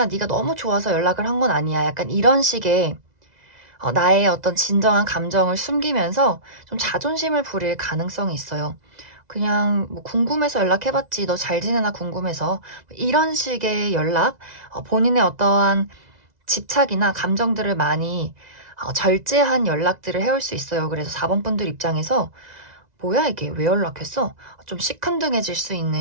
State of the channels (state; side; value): late; left; 2.0 ms